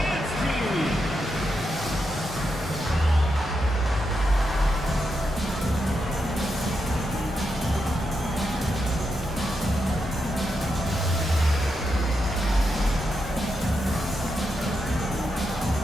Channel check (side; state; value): both; normal; correlation 0.85